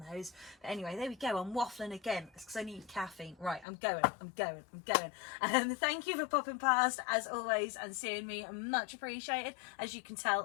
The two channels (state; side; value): drops out; right; at 3.7 s